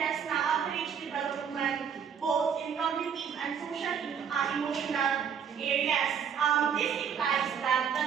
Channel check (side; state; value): left; quieter; 7.5 dB